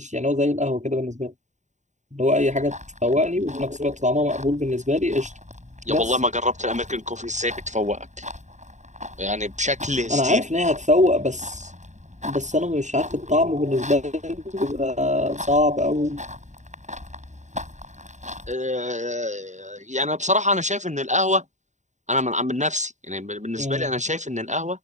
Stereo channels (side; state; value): left; late; 0.34 ms